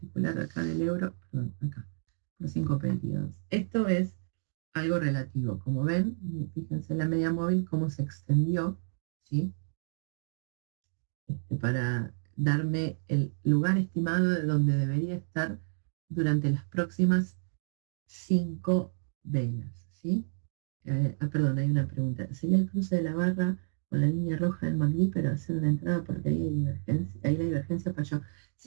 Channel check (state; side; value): silent; left; digital silence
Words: acá del euro, perdón, acá, por 5 periodos. Esto es algo relativo. Como ven, fíjense la media móvil cómo se extendió, ¿sí? Para darme el lugar estimado de donde debería estar durante las próximas 5 velas, ¿sí? Perdón, hay una pregunta. ¿Sería el cruce de la barra con la línea roja del MACD, pero hacer una entrada porque ahí la divergencia falló?